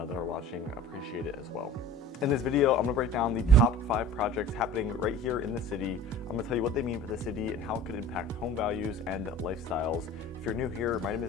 are watching appreciate it as well. In this video, I'm gonna break down the top 5 projects happening right here in the city. I'm gonna tell you what they mean for the city and how it could impact home values and lifestyles. If you're new here, my name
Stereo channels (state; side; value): normal; both; correlation 0.42